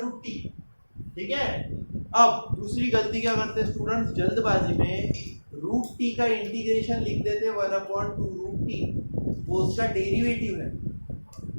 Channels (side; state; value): both; inverted; correlation -1.00